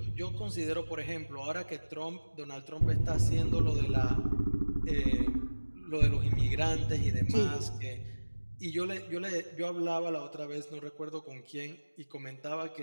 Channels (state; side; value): inverted; both; correlation -1.00